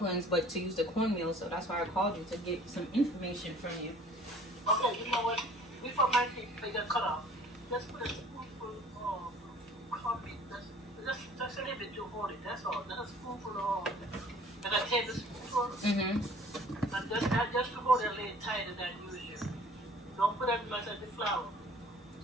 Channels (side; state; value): both; normal; correlation 0.52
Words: but to use the cornmeal. So that's why I called you to get some information from you. Okay, you know what? Before my teeth they get cut off, let's put a spoonful of coffee. Just a little bit to hold it. That's all. Just a spoonful of, like a tablespoonful. And just to hold it a little tighter than usual. Don't put as much as the flour.